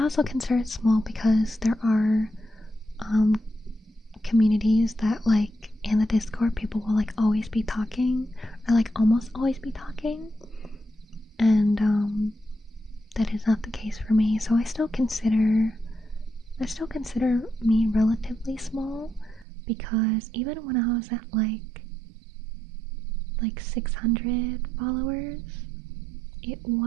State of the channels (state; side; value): drops out; left; at 19.5 s